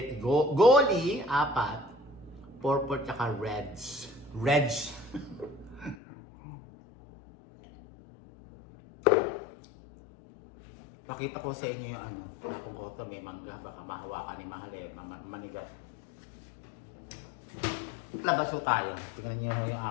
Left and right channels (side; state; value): right; drops out; at 6.0 s